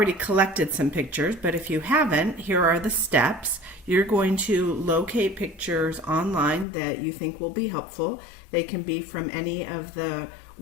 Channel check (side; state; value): right; drops out; at 6.7 s